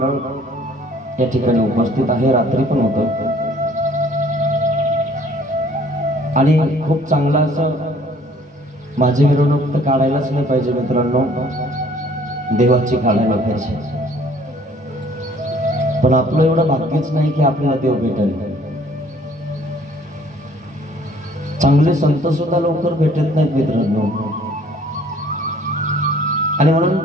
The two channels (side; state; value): both; normal; correlation 0.57